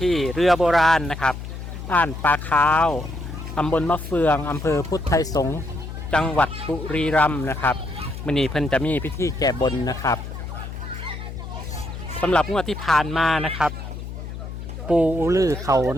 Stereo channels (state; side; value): noise; left; hum, 9 dB below the sound